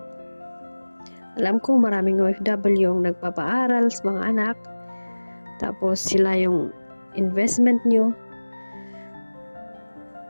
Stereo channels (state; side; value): inverted; both; correlation -1.00